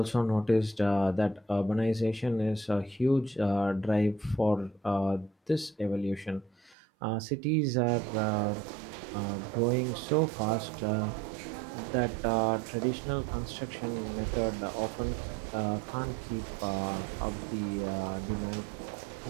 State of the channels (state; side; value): drops out; left; at 6.8 s